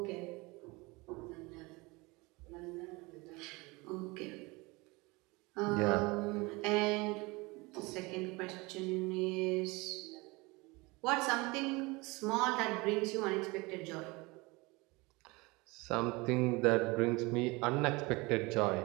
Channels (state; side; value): quieter; left; 24.5 dB